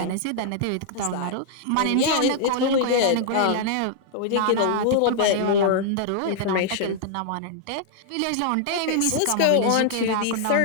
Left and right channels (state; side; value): different; both; correlation -0.01